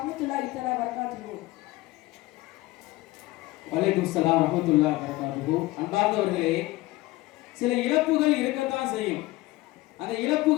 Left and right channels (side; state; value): right; quieter; 19.1 dB